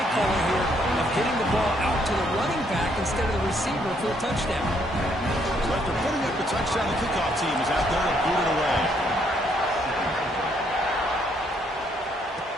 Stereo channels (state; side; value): normal; both; correlation 0.70